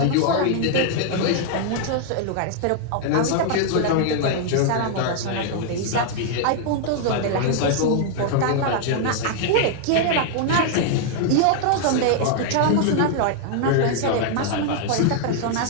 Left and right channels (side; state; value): both; different; correlation -0.01